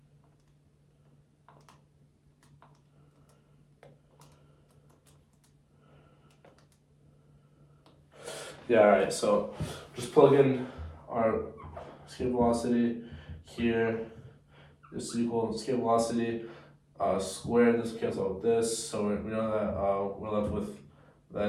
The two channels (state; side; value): identical; both; correlation 1.00